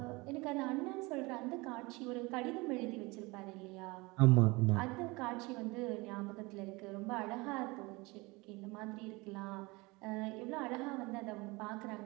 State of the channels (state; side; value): quieter; left; 24.4 dB